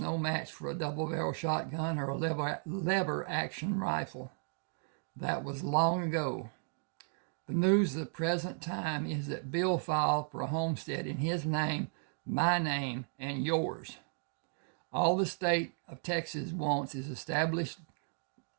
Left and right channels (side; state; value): left; silent; 55 dB below the other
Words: no match for a double-barrel shotgun or a lever-action rifle. That was long ago. The news of the present time is that Bill filed for a homestead in his name, my name, and yours. All the state of Texas wants is established